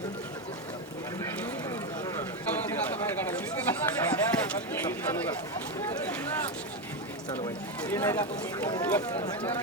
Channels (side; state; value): both; normal; correlation 0.11